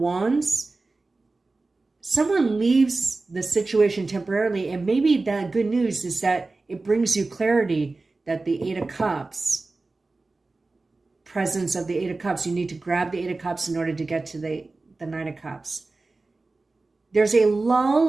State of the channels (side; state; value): left; quieter; 3.5 dB